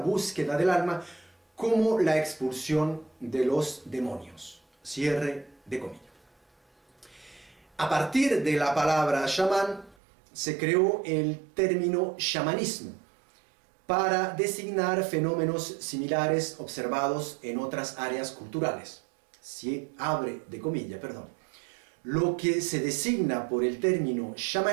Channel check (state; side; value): drops out; left; at 10.0 s